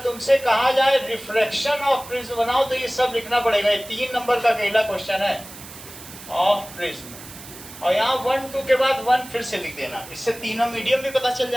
तुमसे कहा जाए रिफ्रैक्शन ऑफ प्रिज्म बनाओ तो ये सब लिखना पड़ेगा। ये 3 नंबर का अकेला क्वेश्चन है ऑफ प्रिज्म, और यहाँ 1 2 के बाद 1 फिर से लिख देना, इससे तीनों मीडियम भी पता चल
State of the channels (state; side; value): noise; right; hiss, 16 dB below the sound